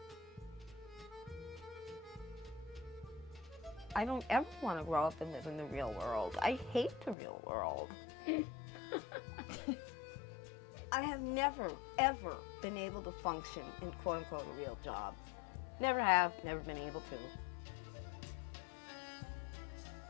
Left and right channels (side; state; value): right; drops out; at 7.2 s